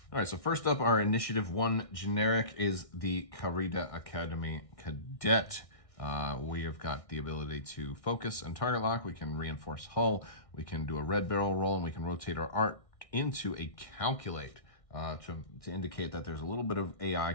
All right, so first up, our Initiative 1 generic is the Carida Academy Cadet. We have got the ability to focus and target lock. We can reinforce hull. We can do a red barrel roll, and we can rotate our arc into a calculate to indicate that there's a little bit of AI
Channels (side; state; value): right; late; 1.6 ms